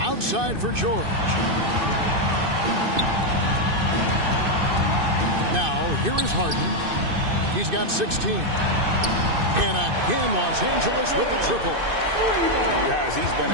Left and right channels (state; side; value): late; left; 2.6 ms